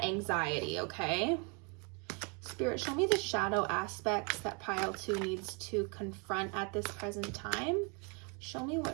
anxiety, okay? Spirit, show me the shadow aspects that pile 2 needs to confront at this present time. Show me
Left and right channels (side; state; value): left; quieter; 34.2 dB